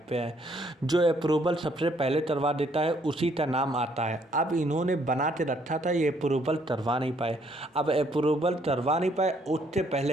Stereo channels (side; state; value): both; normal; correlation 0.67